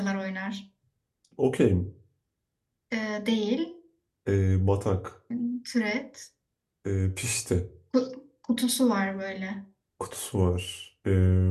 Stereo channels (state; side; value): identical; both; correlation 1.00